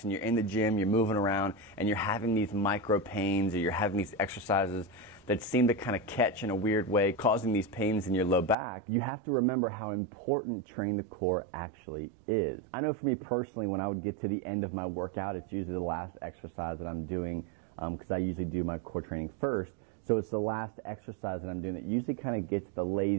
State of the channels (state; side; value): drops out; left; at 8.6 s